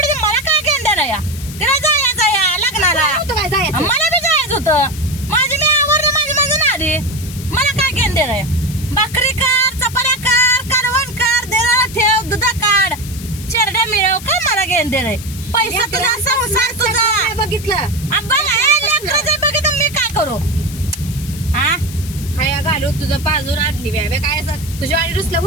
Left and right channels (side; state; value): left; noise; hiss, 14 dB below the sound